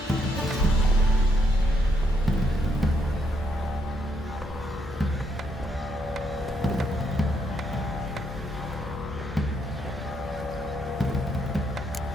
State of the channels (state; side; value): normal; both; correlation 0.75